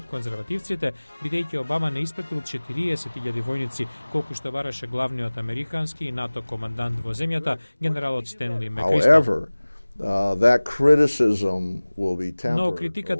конзервативците, бидејќи Обама не испратил 40.000 војници, колку што бараше главниот американски и НАТО командант во земјата, генералот Стенли Мекристал. Но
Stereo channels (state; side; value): inverted; both; correlation -1.00